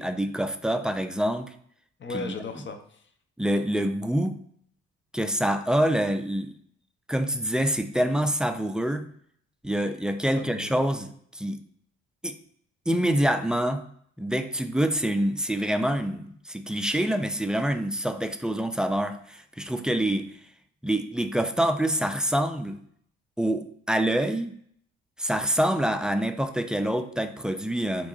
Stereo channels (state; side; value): normal; both; correlation 0.80